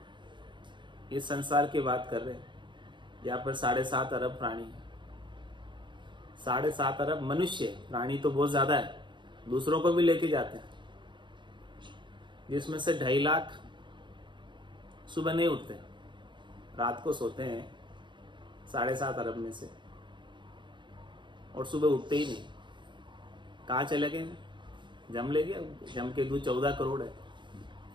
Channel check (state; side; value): late; left; 0.23 ms